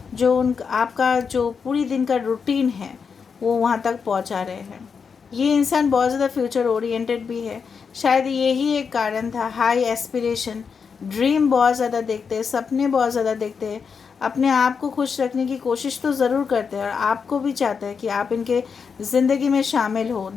जो आपका जो पूरी दिन का रूटीन है वो वहाँ तक पहुँचा रहे हैं। ये इंसान बहुत ज़्यादा फ्यूचर ओरिएंटेड भी है, शायद यही एक कारण था, हाई एस्पिरेशन, ड्रीम बहुत ज़्यादा देखते हैं, सपने बहुत ज़्यादा देखते हैं, अपने आप को खुश रखने की कोशिश तो ज़रूर करते हैं, और आपको भी चाहते हैं कि आप इनके ज़िंदगी में शामिल हो,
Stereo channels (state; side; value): quieter; right; 5.9 dB